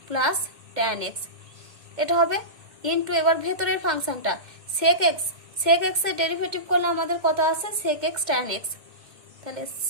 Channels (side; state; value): left; late; 2.1 ms